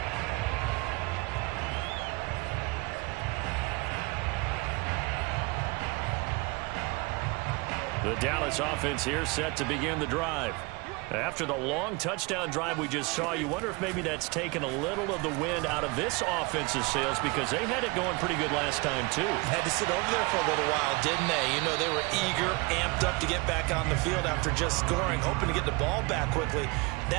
The Dallas offense here set to begin the drive. After the long touchdown drive we just saw, you wonder if maybe that's taken a little of the wind out of this offense's sails because they had it going pretty good last time, too. Had to sit over there for a little while, didn't they? You know, they were eager, amped up to get back on the field after just scoring, hoping to get the ball back quickly.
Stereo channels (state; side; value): quieter; left; 26.4 dB